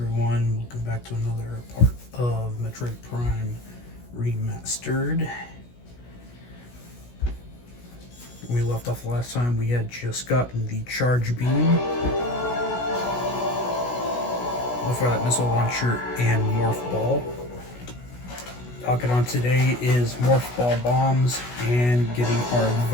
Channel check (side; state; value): right; late; 16 ms